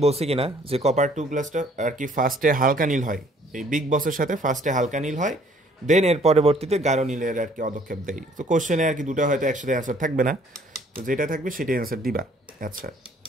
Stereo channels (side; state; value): both; normal; correlation 0.59